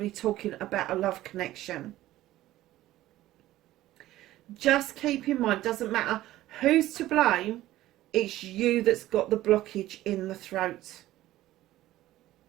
talking about a love connection. Just keep in mind, doesn't matter who's to blame, it's you that's got the blockage in the throat.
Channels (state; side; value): quieter; left; 15.3 dB